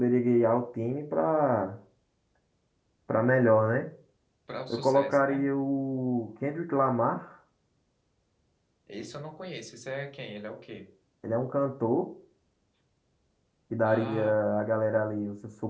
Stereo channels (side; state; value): both; identical; correlation 1.00